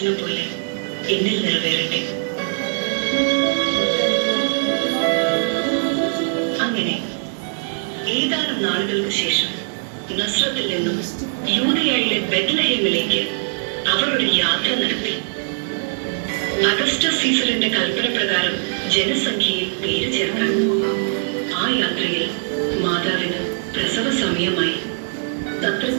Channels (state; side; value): silent; left; digital silence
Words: പോലെ എന്നിൽ നിറവേറട്ടെ. അങ്ങനെ ഏതാനും നാളുകൾക്ക് ശേഷം നസ്രത്തിൽ നിന്നും യൂദയായിലെ ബെത്ലഹേമിലേക്ക് അവർ ഒരു യാത്ര നടത്തി. അഗസ്റ്റസ് സീസറിന്റെ കൽപ്പന പ്രകാരം ജനസംഖ്യയെ പേര് ചേർക്കാൻ. ആ യാത്രയിൽ മാതാവിന് പ്രസവ സമയമായി.